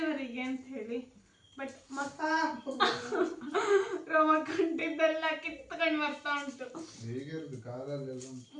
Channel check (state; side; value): identical; both; correlation 1.00